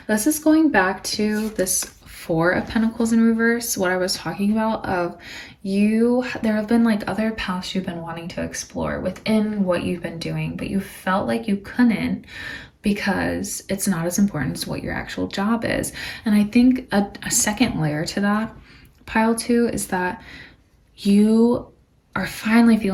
this is going back to this 4 of Pentacles in reverse, what I was talking about of there have been like other paths you've been wanting to explore within what you've been doing, but you felt like you couldn't because it's not as important as what your actual job is. And I think a second layer to that, pile 2, is that you are finally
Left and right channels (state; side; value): identical; both; correlation 1.00